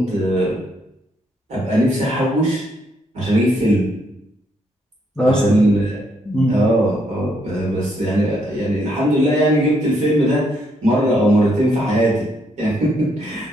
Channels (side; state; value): both; normal; correlation 0.73